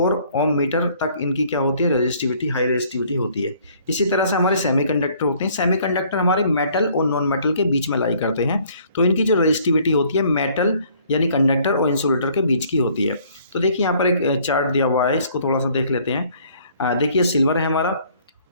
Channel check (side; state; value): both; inverted; correlation -0.60